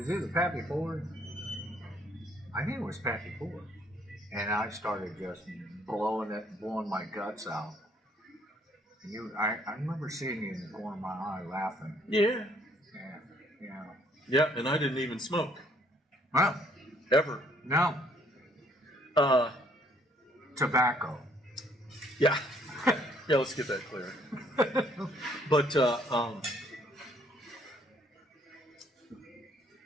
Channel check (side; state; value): both; normal; correlation 0.65